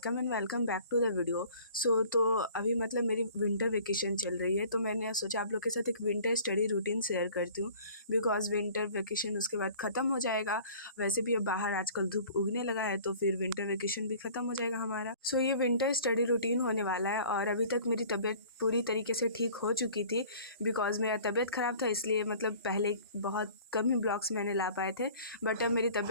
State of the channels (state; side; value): inverted; both; correlation -0.49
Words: and welcome back to the video. तो अभी मतलब मेरी विंटर वेकेशन चल रही है, तो मैंने सोचा आप लोग के साथ एक विंटर स्टडी रूटीन शेयर करती हूँ। बिकॉज़ विंटर वेकेशन उसके बाद ख़त्म हो जाएगा। वैसे भी अब बाहर आजकल धूप उगने लगा है, तो फिर विंटर वेकेशन भी ख़त्म हो जाएगा हमारा। सो ये विंटर स्टडी रूटीन होने वाला है और अभी तक मेरी तबीयत पूरी तरीके से ठीक हो चुकी थी। बिकॉज़ मेरा तबीयत ख़राब था, इसलिए मतलब पहले बहुत कम ही ब्लॉग्स मैंने ला पाए थे। बट अब मेरी